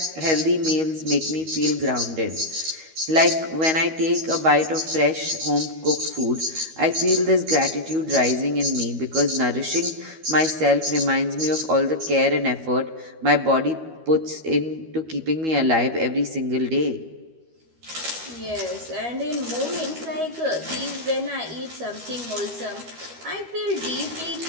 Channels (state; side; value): late; left; 13 ms